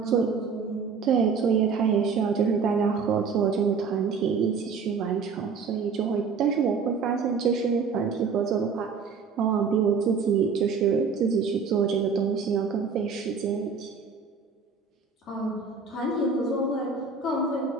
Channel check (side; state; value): left; quieter; 5.4 dB